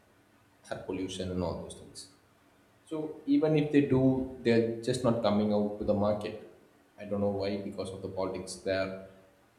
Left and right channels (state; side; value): identical; both; correlation 1.00